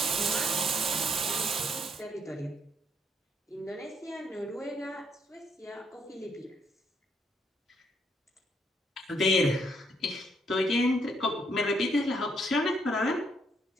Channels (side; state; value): both; normal; correlation 0.72